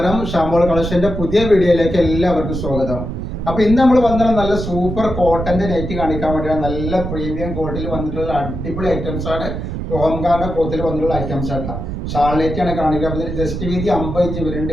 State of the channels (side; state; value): right; noise; rumble, 5 dB below the sound